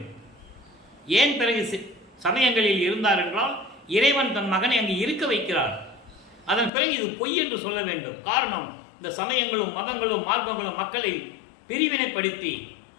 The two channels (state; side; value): drops out; right; at 6.7 s